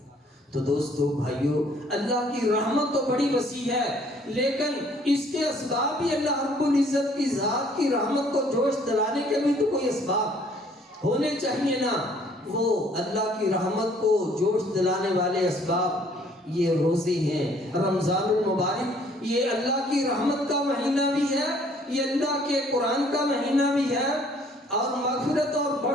تو دوستو بھائیو، اللہ کی رحمت تو بڑی وسیع ہے، لیکن اس کے اسباب بھی اللہ رب العزت کی ذات کی رحمت کو جوش دلانے کے بھی تو کوئی اسباب ہونے چاہیے نا۔ وہ اللہ کی رحمت کو جوش دلانے والے اسباب یہ روزے ہیں، رمضان المبارک یہ اللہ کی رحمت کا مہینہ بھی ہے، یہ اللہ کے قرآن کا مہینہ بھی ہے اور مغفرت اور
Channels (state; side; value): normal; both; correlation 0.60